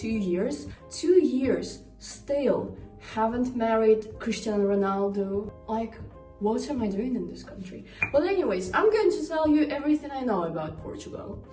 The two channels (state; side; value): identical; both; correlation 1.00